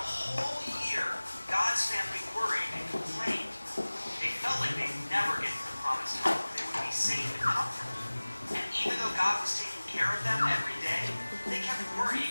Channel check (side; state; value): both; inverted; correlation -1.00